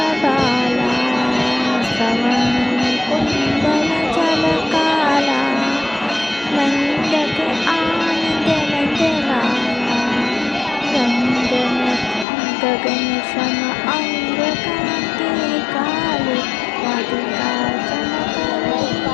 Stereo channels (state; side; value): drops out; right; at 12.2 s